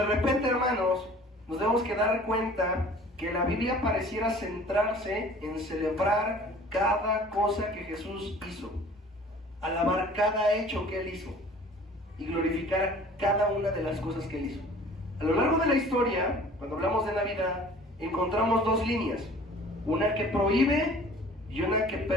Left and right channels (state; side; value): normal; both; correlation 0.48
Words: repente, hermanos, nos debemos que dar cuenta que la Biblia pareciera centrarse en celebrar cada cosa que Jesús hizo, alabar cada hecho que Él hizo. y glorificar cada una de las cosas que Él hizo. A lo largo de la historia, cuando hablamos de Navidad, encontramos dos líneas, una que prohíbe y una que